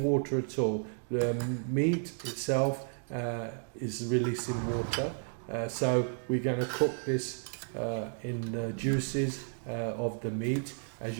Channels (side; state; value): left; silent; 56 dB below the other